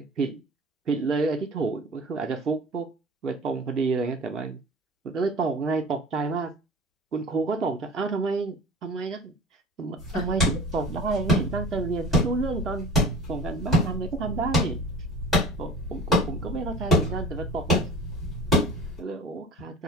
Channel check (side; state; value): both; normal; correlation 0.41